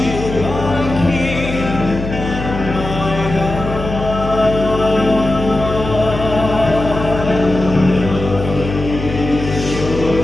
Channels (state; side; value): noise; left; hum, 7 dB below the sound